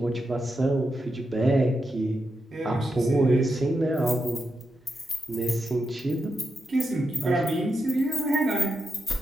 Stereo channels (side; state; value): both; normal; correlation 0.86